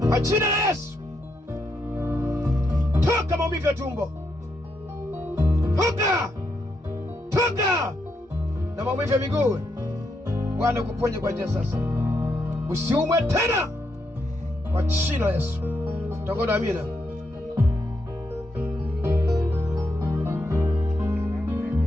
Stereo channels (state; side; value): normal; both; correlation 0.80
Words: Kwa jina la Yesu. Toka maumivu ya tumbo. Toka. toka na maumivu ya miguu. Bwana kuponye kwa njia sasa, usiumwe tena kwa jina la Yesu. Tangoda amina.